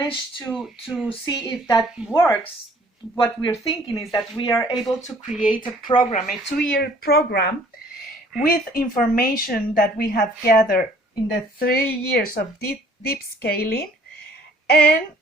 to see if that works, what we're thinking is that we are able to create a program, a 2-year program, with information that we have gathered in the 3 years of deep scaling. And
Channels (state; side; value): normal; both; correlation 0.57